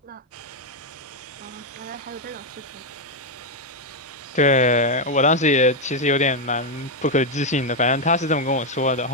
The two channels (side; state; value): both; normal; correlation 0.02